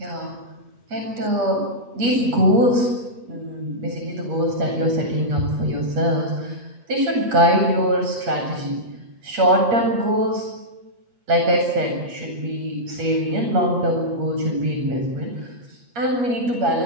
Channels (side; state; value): left; late; 8.5 ms